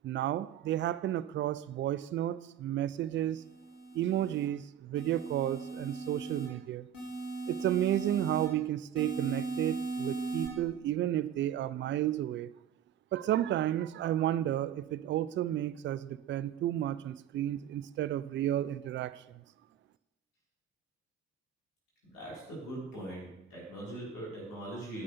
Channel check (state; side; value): quieter; left; 10.3 dB